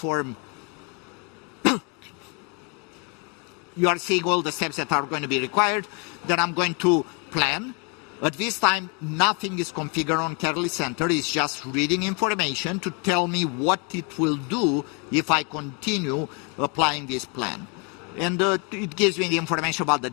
You are seeing all the steps that are going to be required. Then I'm going to plan. At this time, nothing is configured on Catalyst Center. It's just reading information to tell me what it will do if I continue applying this plan. And it gives me the information about the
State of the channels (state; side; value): quieter; right; 32.7 dB